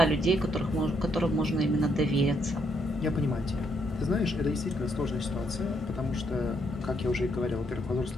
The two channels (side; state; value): both; normal; correlation 0.74